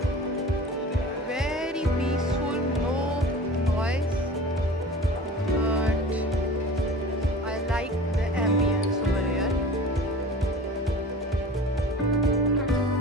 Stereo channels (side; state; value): both; normal; correlation 0.39